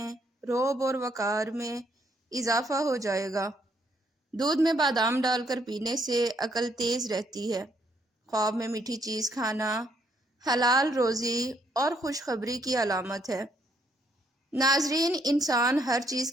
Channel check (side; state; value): both; normal; correlation 0.71